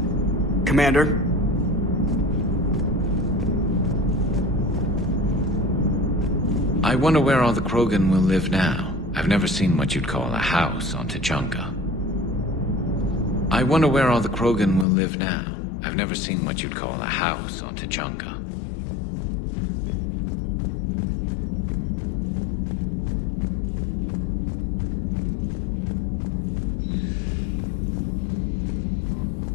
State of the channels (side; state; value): right; drops out; at 14.9 s